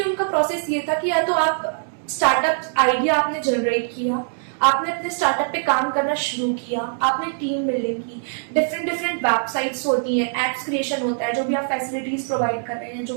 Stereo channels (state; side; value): silent; left; digital silence